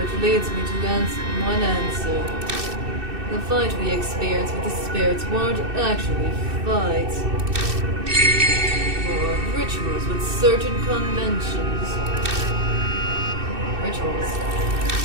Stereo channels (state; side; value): late; left; 2.6 ms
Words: leads me to one answer. The fight we experienced with the spirits weren't actually fights. Or rituals with certain conventions. Rituals.